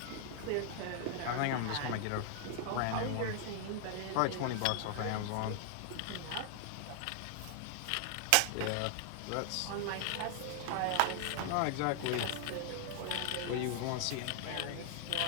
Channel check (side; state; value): both; different; correlation 0.00